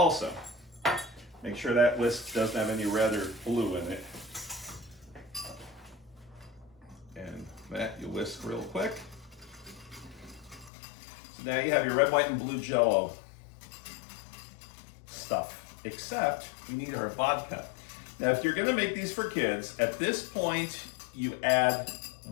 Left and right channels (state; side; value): drops out; right; at 10.7 s